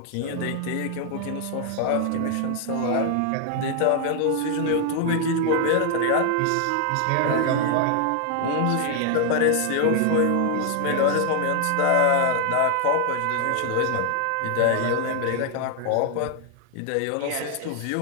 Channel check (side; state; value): both; different; correlation 0.00